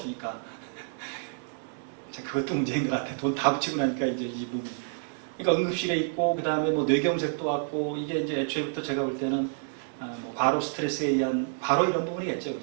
자, 그것도 문제인 것 같아. 돈 다 붙이고 나니까 이제 이 몸이. 그러니까 응급실에 있고 그 다음에 뭐 뇌경색도 왔고 이게 이제 애초에부터 제가 볼 때는 뭐 과로 스트레스에 의한 바로 이런 부분이겠죠,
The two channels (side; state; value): left; silent; digital silence